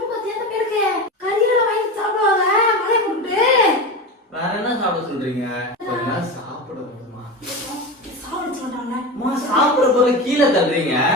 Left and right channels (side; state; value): both; normal; correlation 0.24